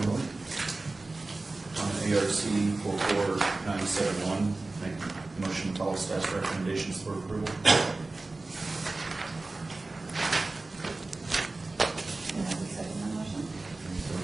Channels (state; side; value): quieter; left; 3.3 dB